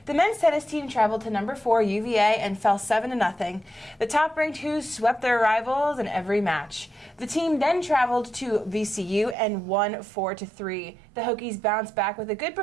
The men's tennis team traveled to number 4 UVA and fell 7-0. The top-ranked Hoos swept their rivals in every match. The team then traveled to VCU and won 4-3. The Hokies bounced back with a good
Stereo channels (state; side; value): drops out; left; at 9.3 s